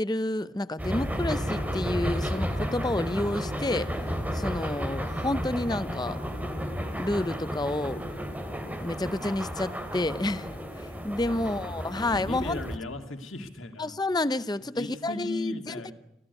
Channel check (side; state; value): both; normal; correlation 0.79